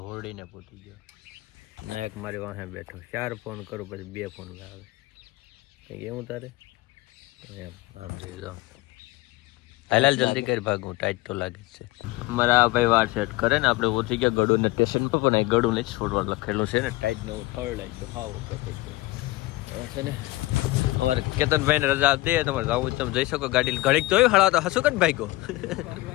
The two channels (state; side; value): quieter; right; 20.0 dB